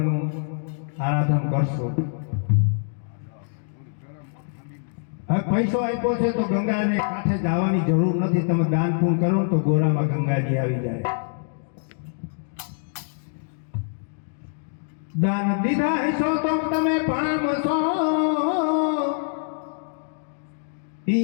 આરાધન કરશું. હવે પૈસો આપ્યો છે તો ગંગાને કાંઠે જવાની જરૂર નથી. તમે દાન પૂર્ણ કરો ને તો ગોરામાં ગંગાજી આવી જાય. દાન દીધા હશો તો તમે પામશો.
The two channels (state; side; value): silent; right; digital silence